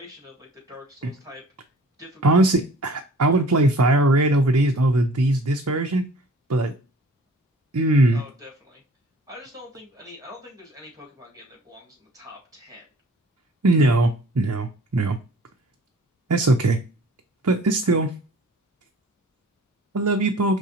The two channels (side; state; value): both; normal; correlation 0.50